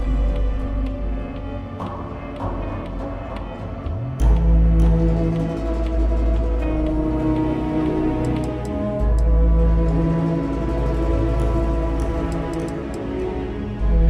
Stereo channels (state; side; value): identical; both; correlation 1.00